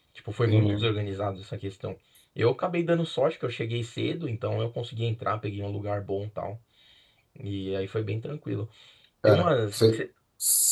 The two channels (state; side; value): identical; both; correlation 1.00